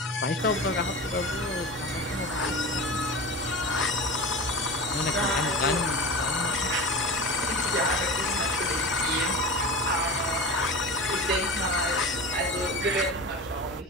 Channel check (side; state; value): both; normal; correlation 0.31